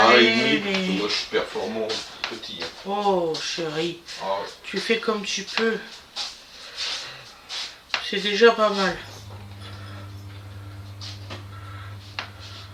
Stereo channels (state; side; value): identical; both; correlation 1.00